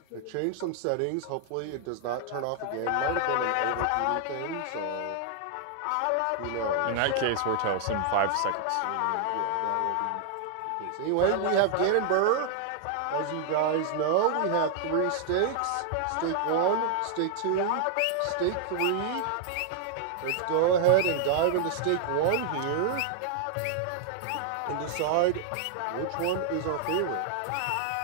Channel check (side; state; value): both; different; correlation 0.00